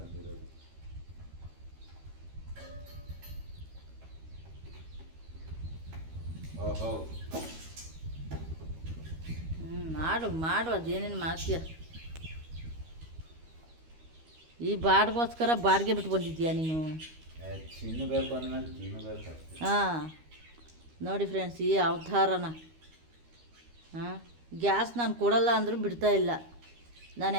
ಓಹೋ ಮಾಡು ಅದೇನೇನು ಮಾಡ್ತೀಯ. ಈ ಬಾಡಿಗೋಸ್ಕರ ಬಾಡಿಗೆ ಬಿಟ್ಟು ಬಂದಿದ್ದೀಯಾ ನೀನು? ತಿನ್ನಬೇಕು ಅಂದಮೇಲೆ ತಿನ್ನಬೇಕು. ಹಾಂ ನೋಡಿ ಫ್ರೆಂಡ್ಸ್, ಈ ಅವತಾರನ ಗ್ಯಾಸ್ ನಾನು ಕೊಡಲ್ಲ ಅಂದರೂ ಬಿಡ್ತಾ ಇಲ್ಲ. ನಾನು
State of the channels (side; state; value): left; late; 13 ms